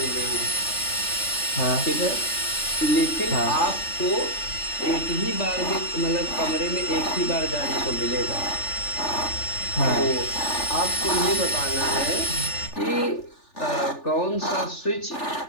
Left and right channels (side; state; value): right; late; 3.4 ms